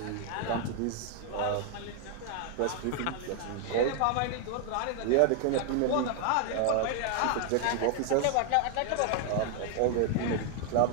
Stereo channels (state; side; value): different; both; correlation 0.00